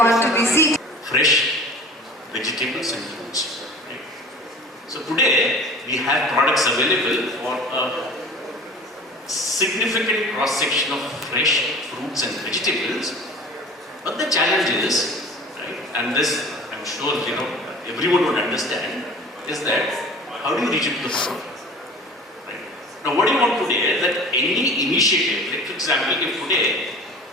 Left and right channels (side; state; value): both; normal; correlation 0.41